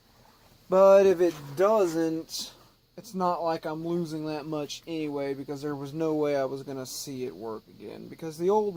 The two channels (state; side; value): identical; both; correlation 1.00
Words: But if it doesn't, it's not like I'm losing that much anyway, because there was no way I was gonna see it work again. Because the old